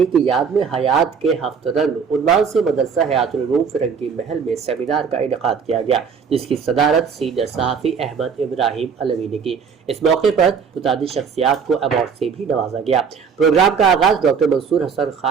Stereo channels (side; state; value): left; quieter; 6.3 dB